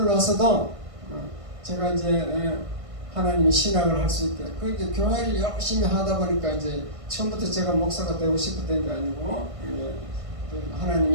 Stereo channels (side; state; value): left; late; 1.5 ms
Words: 와서도 제가 이제 하나님이 신학을 할 수 있게 그 이제 교회를 열심히 하다 보니까 이제 처음부터 제가 목사가 되고 싶었던 게 아니고 하나님이